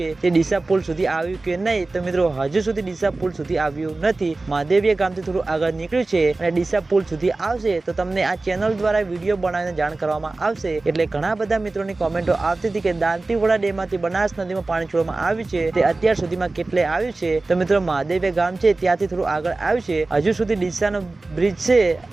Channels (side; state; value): left; quieter; 3.3 dB